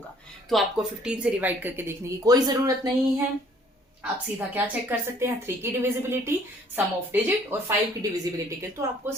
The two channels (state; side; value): normal; both; correlation 0.59